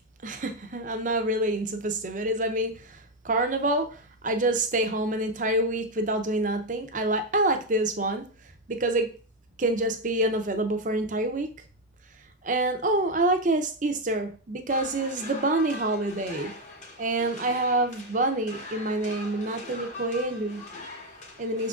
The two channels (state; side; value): normal; both; correlation 0.07